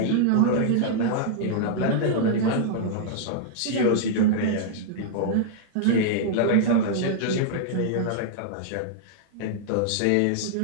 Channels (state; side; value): different; both; correlation -0.01